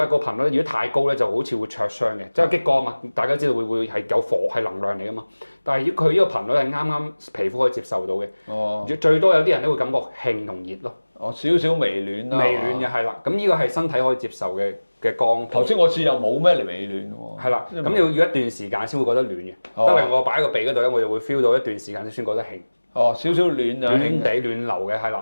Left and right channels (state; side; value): inverted; both; correlation -1.00